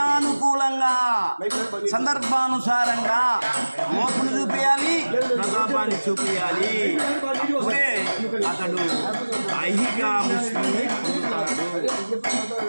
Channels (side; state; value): both; inverted; correlation -1.00